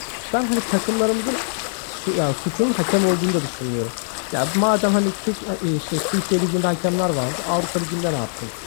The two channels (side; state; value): right; silent; 64 dB below the other